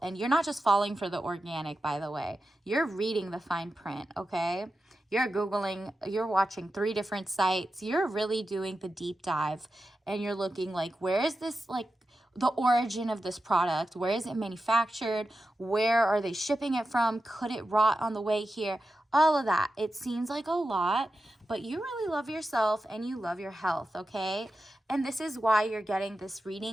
and you're not just falling for the organic, by the way. You're reading the fine print, okay? You're Googling, you're watching 3 different sites. You're really doing the deep dive, and you're looking like, where is this, the origin of this product? Where is it manufactured? Where are they shipping it from? Could it rot on the way here? All of that. It seems like a lot, but you really love yourself and you love your health, okay? And this is why you're getting this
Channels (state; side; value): normal; both; correlation 0.91